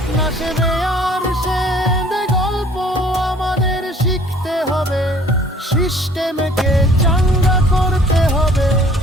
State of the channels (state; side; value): normal; both; correlation 0.55